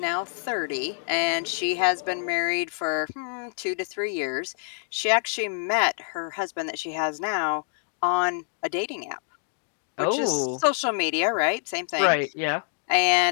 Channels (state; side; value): silent; right; digital silence